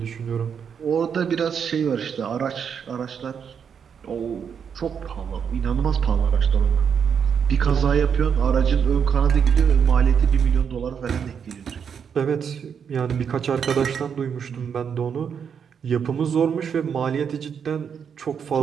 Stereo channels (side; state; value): left; quieter; 7.2 dB